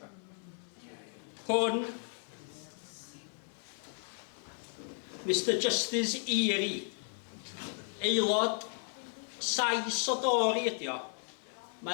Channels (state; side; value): silent; right; 55 dB below the other